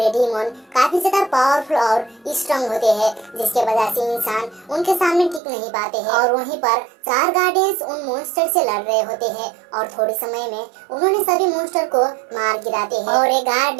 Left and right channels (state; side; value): drops out; left; at 5.4 s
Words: डीमन काफी ज्यादा पावरफुल और स्ट्रांग होते हैं जिसके वजह से इंसान उनके सामने टिक नहीं पाते हैं। और वहीं पर चार गार्डियंस उन मॉन्स्टर से लड़ रहे होते हैं और थोड़े समय में उन्होंने सभी मॉन्स्टर को मार गिराते हैं। और ये